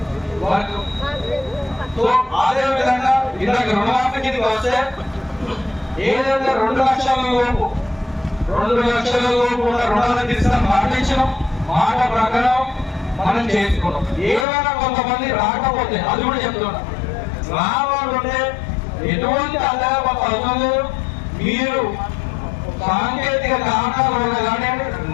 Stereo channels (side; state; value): right; drops out; at 14.5 s